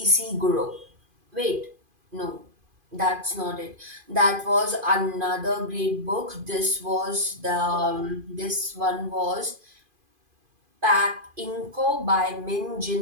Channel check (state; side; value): late; left; 2.5 ms